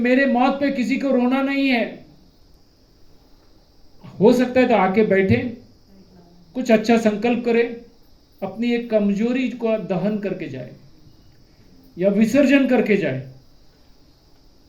मौत पे किसी को रोना नहीं है। हो सकता है तो आके बैठे, कुछ अच्छा संकल्प करे, अपनी एक कमजोरी को दहन करके जाए या विसर्जन करके जाए।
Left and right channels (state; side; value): identical; both; correlation 1.00